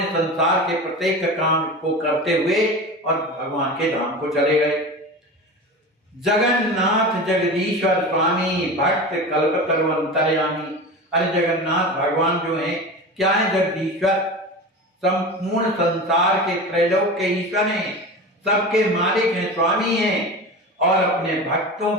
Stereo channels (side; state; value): both; normal; correlation 0.30